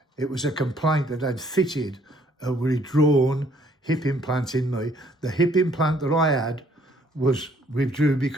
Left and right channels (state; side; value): normal; both; correlation 0.63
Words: It was a complaint that had fitted a withdrawn hip implant in me. The hip implant that I had was withdrew